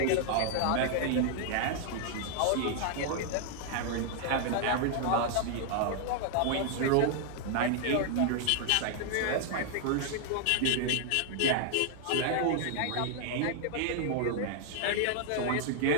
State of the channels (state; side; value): different; both; correlation 0.00